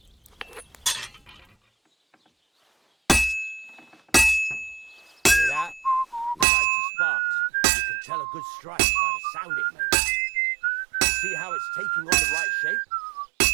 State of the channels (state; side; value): drops out; left; at 6.5 s